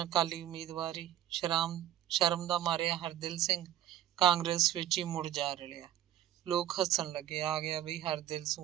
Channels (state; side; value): quieter; left; 12.3 dB